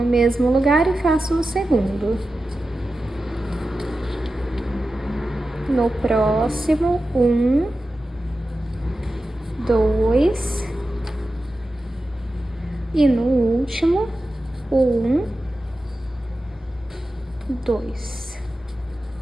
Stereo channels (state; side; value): normal; both; correlation 0.93